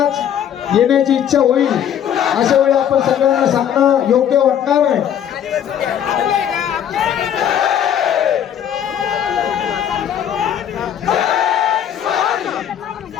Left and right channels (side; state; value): right; quieter; 9.6 dB